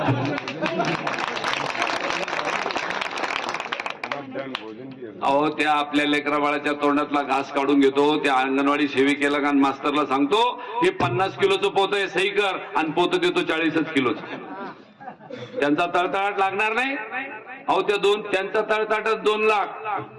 अहो त्या आपल्या लेकरा बाळाच्या तोंडातला घास काढून घेतो, त्या अंगणवाडी सेविकेला आणि मास्तरला सांगतो हे 50 किलोचं पोतं आहे, सही कर, आणि पोतं देतो 40 किलोचं. त्यांचा तळतळाट लागणार नाही. अहो त्यांचा तळतळाटात 2 लाख,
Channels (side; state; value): both; identical; correlation 1.00